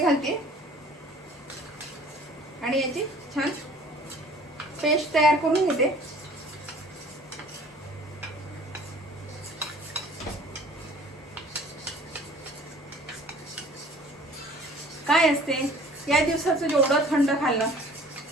घालते आणि याची छान पेस्ट तयार करून घेते. काय असते, या दिवसाचं जेवढं थंड खाल्लं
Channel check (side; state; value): both; normal; correlation 0.50